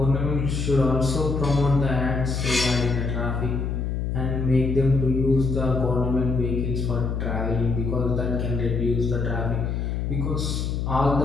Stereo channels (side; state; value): left; noise; hum, 1 dB below the sound